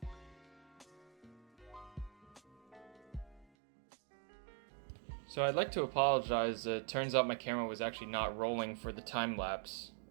So I'd like to apologize. It turns out my camera was actually not rolling for the time lapse.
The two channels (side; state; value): left; drops out; at 3.5 s